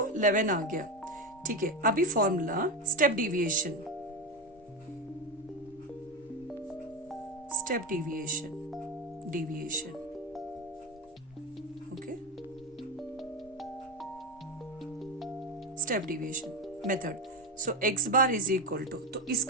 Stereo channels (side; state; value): both; normal; correlation 0.16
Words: 11 आ गया। ठीक है, अभी formula step deviation, step deviation, deviation, okay, step deviation method. So x bar is equal to, तो